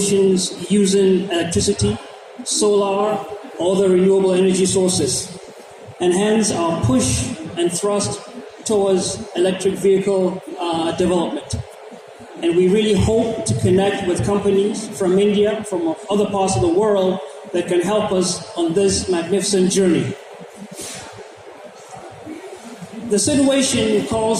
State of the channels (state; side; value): identical; both; correlation 1.00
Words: using electricity, solar, or the renewable energy sources. And hence our push and thrust towards electric vehicle development. And we really hope to connect with companies from India, from other parts of the world that can help us on this magnificent journey. The situation